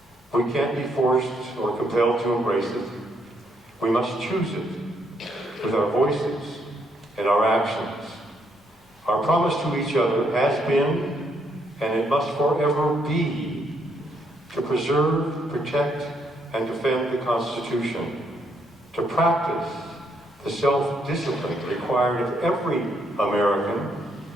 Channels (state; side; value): normal; both; correlation 0.73